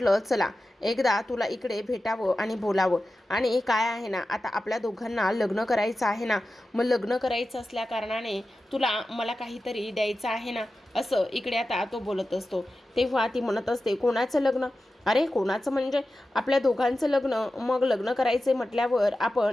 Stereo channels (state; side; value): normal; both; correlation 0.93